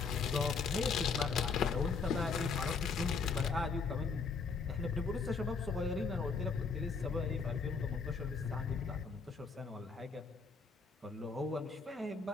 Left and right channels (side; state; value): right; quieter; 4.9 dB